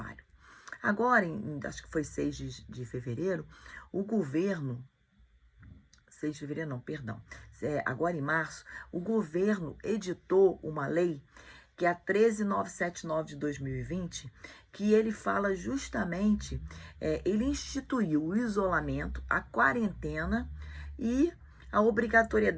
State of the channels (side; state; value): both; identical; correlation 1.00